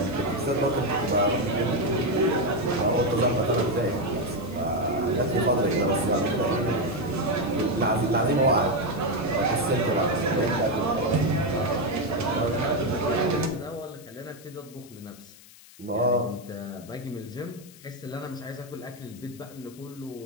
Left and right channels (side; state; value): left; noise; hiss, 22 dB below the sound